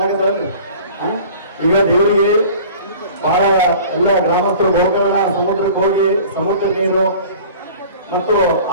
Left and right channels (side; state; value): both; inverted; correlation -0.44